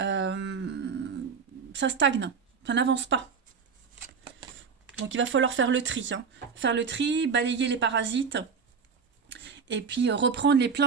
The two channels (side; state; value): left; quieter; 5.9 dB